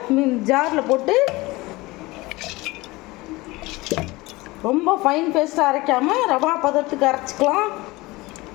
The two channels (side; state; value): right; quieter; 21.4 dB